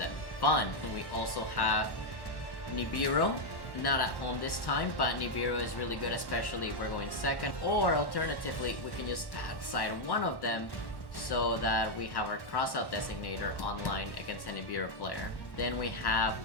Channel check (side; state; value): right; late; 1.1 ms